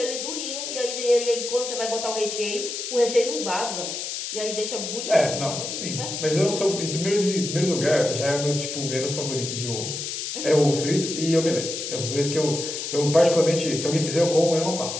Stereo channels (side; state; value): left; noise; hiss, 5 dB below the sound